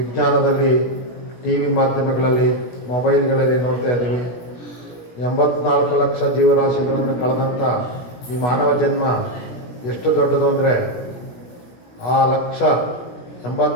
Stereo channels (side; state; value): right; late; 17 ms